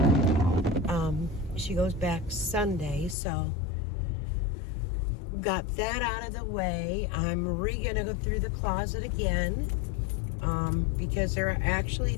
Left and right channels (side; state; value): right; drops out; at 3.2 s